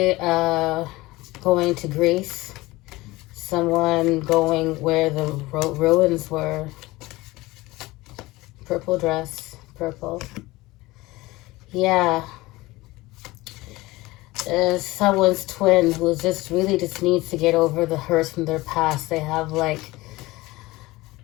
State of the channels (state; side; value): quieter; right; 20.1 dB